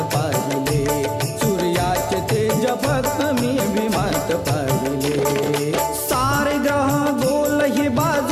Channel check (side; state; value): both; identical; correlation 1.00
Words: पाहिले, सूर्याचे तेज फक्त मी भीमात पाहिले। सारे ग्रह गोल हे